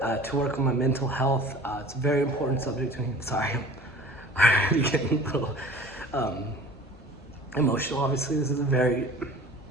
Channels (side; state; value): both; normal; correlation 0.44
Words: to work on my mental health. It's a very important subject to me. Sorry, I'm already getting a little emotional. Obviously, this is a very